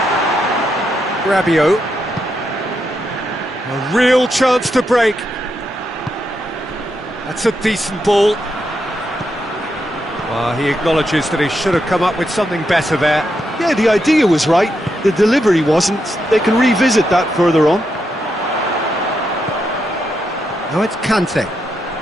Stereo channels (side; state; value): both; normal; correlation 0.82